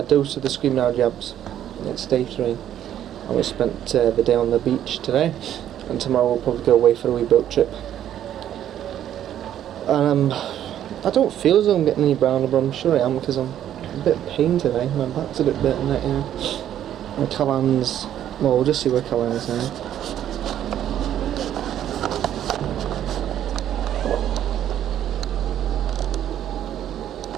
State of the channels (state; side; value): quieter; left; 10.9 dB